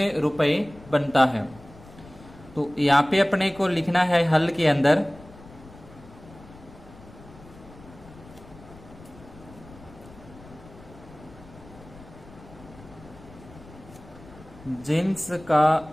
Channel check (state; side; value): noise; left; rumble, 20 dB below the sound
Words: रुपए बनता है। तो यहाँ पे अपने को लिखना है हल के अंदर जींस का